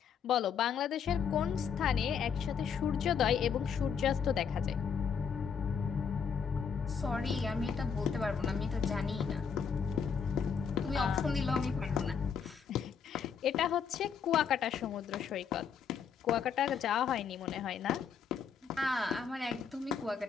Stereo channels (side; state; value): right; quieter; 6.7 dB